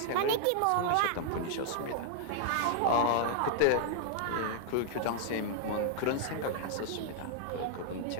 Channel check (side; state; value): both; different; correlation -0.01